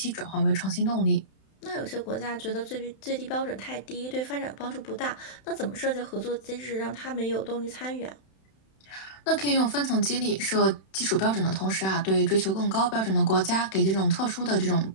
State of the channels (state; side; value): late; right; 31 ms